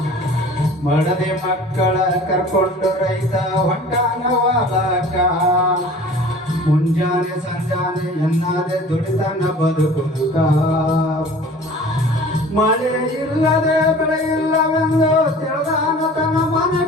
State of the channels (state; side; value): normal; both; correlation 0.44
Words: ಮಡದಿ ಮಕ್ಕಳ ಕರ್ಕೊಂಡು ರೈತ ಹೊಂಟಾನ ಹೊಲಕ್ಕ, ಮುಂಜಾನೆ ಸಂಜಾನೆ ಎನ್ನಾದೆ ದುಡಿತಾನ ಬದುಕುದುಕ. ಮಳೆ ಇಲ್ಲದೆ ಬೆಳೆ ಇಲ್ಲವೆಂದು ತಿಳಿದಾನ ತನ್ನ